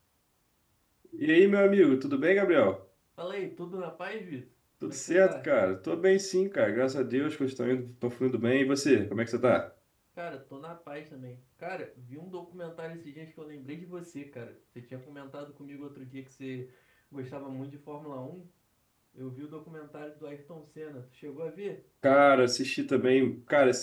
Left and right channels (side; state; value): both; identical; correlation 1.00